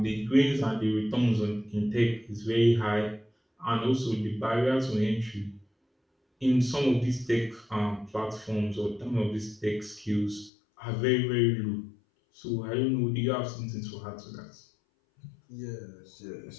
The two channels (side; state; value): right; drops out; at 10.5 s